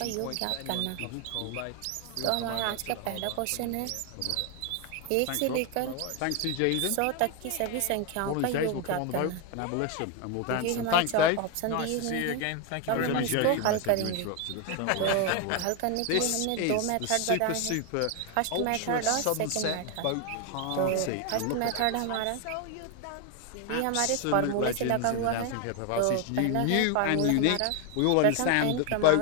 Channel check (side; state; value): both; different; correlation 0.01